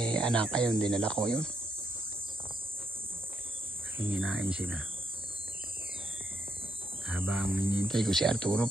anak ayun, dinala ko yun. Hinginain sila. Habang hinihintay ko si Arturo,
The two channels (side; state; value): both; normal; correlation 0.77